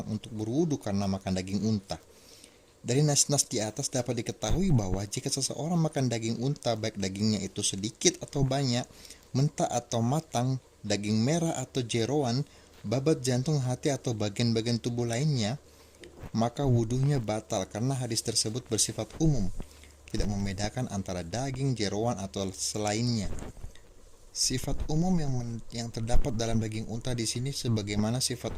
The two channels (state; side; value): identical; both; correlation 1.00